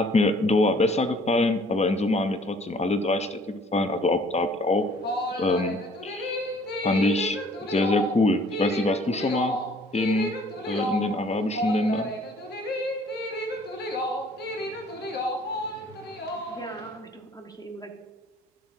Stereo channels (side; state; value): both; normal; correlation 0.57